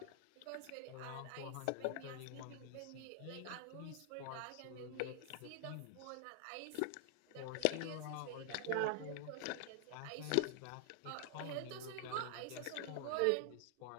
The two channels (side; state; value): both; different; correlation 0.00